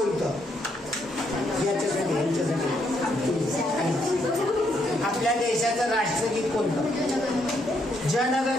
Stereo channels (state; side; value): normal; both; correlation 0.74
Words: आपल्या देशाचं राष्ट्रगीत कोणतं?